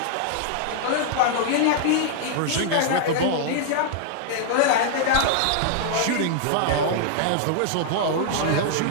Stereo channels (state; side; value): different; both; correlation -0.01